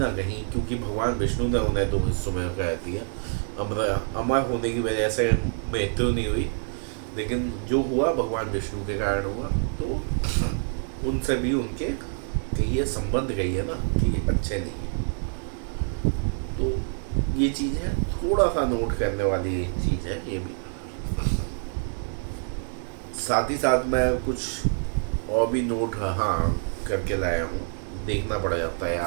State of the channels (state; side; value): silent; left; 59 dB below the other